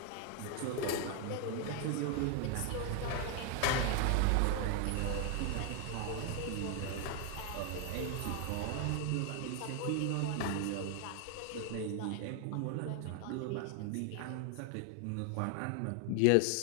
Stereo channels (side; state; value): both; different; correlation 0.00